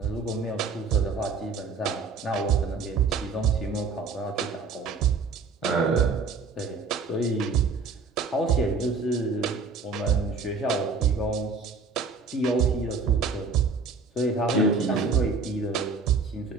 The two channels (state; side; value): quieter; left; 4.5 dB